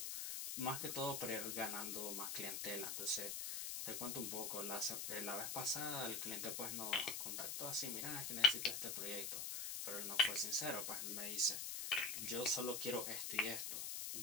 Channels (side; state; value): left; noise; hiss, 2 dB below the sound